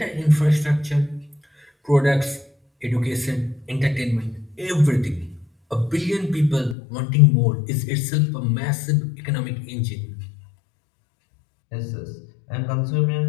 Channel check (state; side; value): drops out; right; at 6.8 s